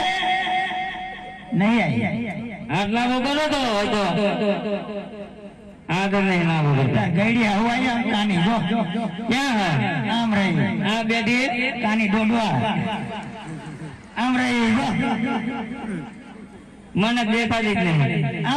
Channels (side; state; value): both; identical; correlation 1.00